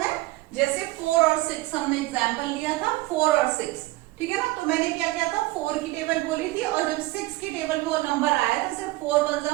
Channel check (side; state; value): left; quieter; 19.8 dB